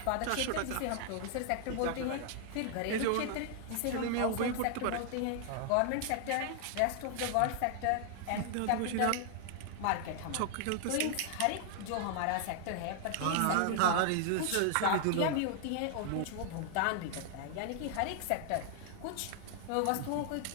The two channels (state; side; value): different; both; correlation 0.00